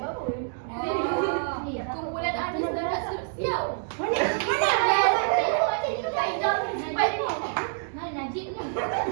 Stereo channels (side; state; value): left; silent; 60 dB below the other